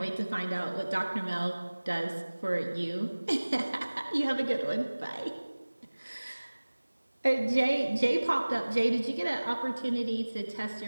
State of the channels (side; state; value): both; inverted; correlation -1.00